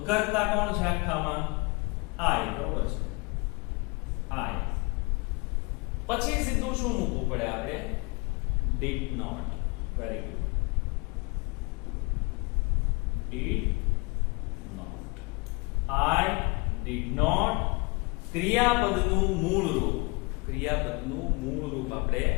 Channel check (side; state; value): right; quieter; 28.4 dB